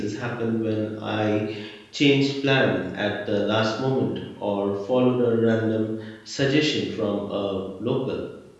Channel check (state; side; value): identical; both; correlation 1.00